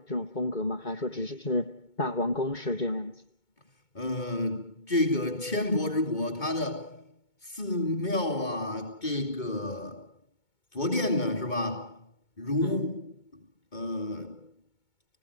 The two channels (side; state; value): right; late; 2.2 ms